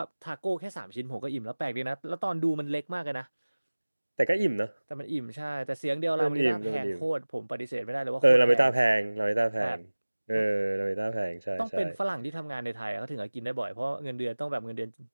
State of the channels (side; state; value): both; inverted; correlation -1.00